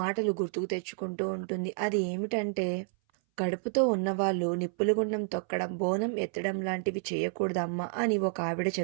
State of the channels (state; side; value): silent; left; 58 dB below the other